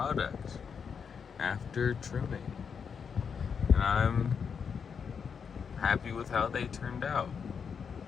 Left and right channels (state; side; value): quieter; right; 6.5 dB